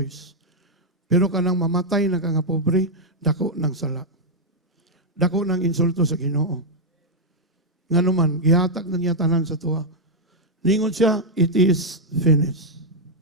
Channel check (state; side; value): normal; both; correlation -0.01